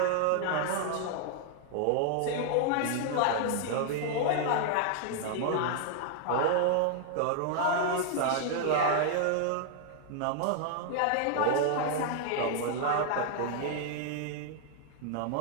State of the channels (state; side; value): different; both; correlation 0.00